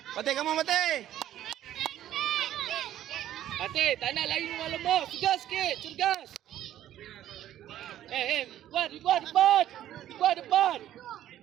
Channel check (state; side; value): quieter; left; 12.2 dB